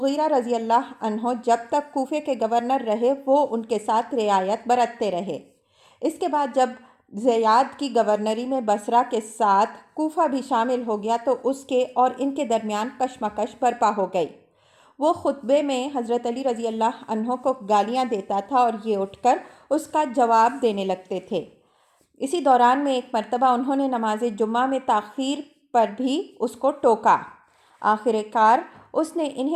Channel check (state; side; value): identical; both; correlation 1.00